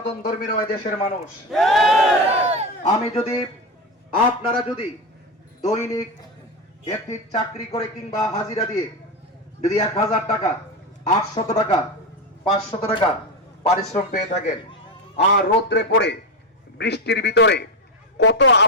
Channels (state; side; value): normal; both; correlation 0.16